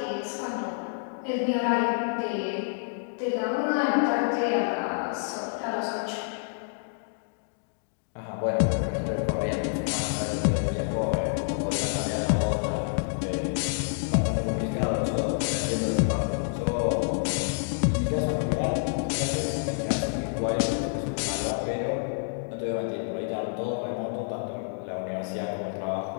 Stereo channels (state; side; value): silent; right; digital silence